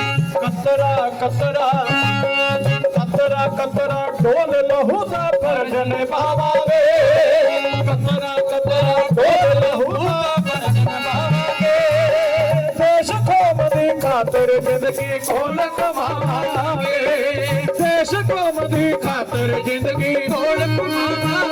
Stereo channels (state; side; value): identical; both; correlation 1.00